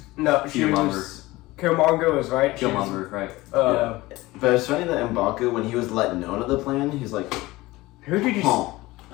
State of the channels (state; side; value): quieter; right; 19.5 dB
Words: Killmonger was right. Killmonger, right. But it's funny that M'Baku, when he was let known of the plan, he's like, "Who did you?"